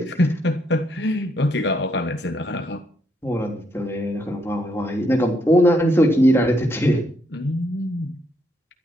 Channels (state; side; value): normal; both; correlation 0.75